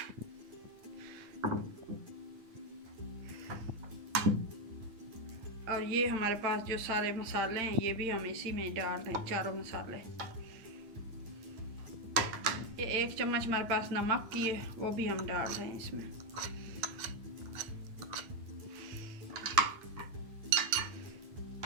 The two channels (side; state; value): left; late; 9.3 ms